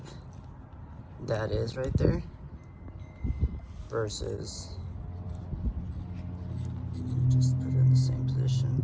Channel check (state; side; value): identical; both; correlation 1.00